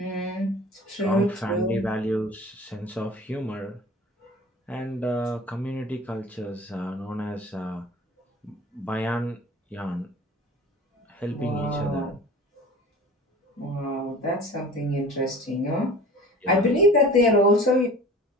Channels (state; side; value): normal; both; correlation 0.41